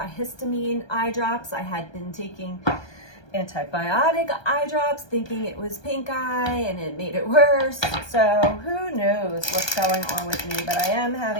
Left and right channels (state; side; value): late; right; 1.2 ms